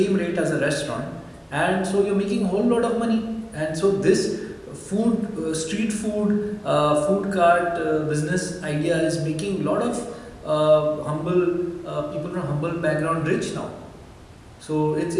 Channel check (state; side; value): identical; both; correlation 1.00